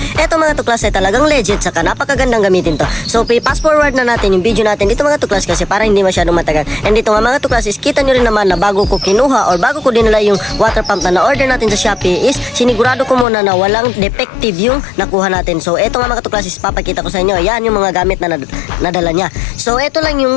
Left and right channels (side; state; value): right; drops out; at 13.2 s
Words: mga tuklas ay talagang legit saka napakagandang gamitin to. So fast forward na natin yung video natin dito mga tuklas kasi para hindi masyadong matagal. And dito nga mga tuklas is kita nyo rin naman na bago ko kinuha or bago ko dinala yung water pump na na-order natin sa Shopee is sinigurado ko muna na walang defective yung nakuha natin. So ito nga mga tuklas is papakita ko sa inyo. Yan yung mga gamit na nadala niya. So ito lang